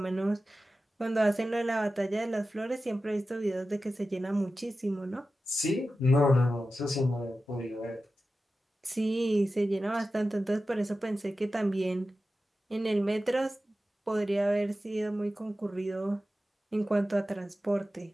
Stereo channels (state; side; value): normal; both; correlation 0.93